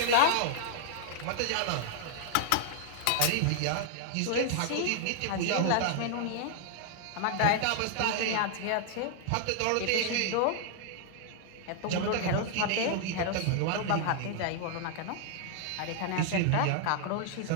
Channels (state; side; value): different; both; correlation 0.00